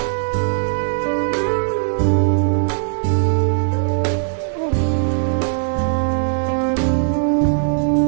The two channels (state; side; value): silent; left; 66 dB below the other